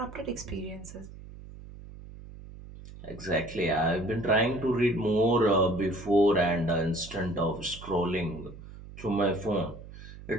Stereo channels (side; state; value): right; noise; hum, 15 dB below the sound